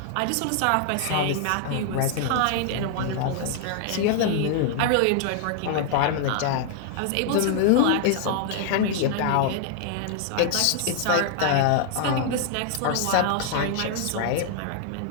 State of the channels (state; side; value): different; both; correlation 0.00